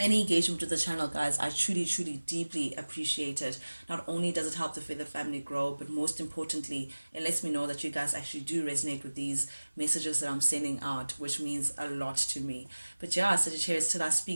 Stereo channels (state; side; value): inverted; both; correlation -1.00